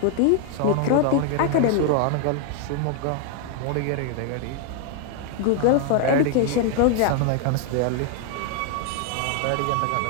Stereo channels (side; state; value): both; different; correlation 0.00